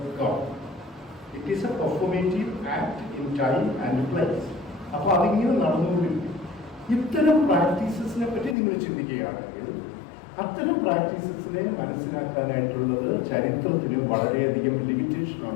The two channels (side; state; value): right; drops out; at 8.6 s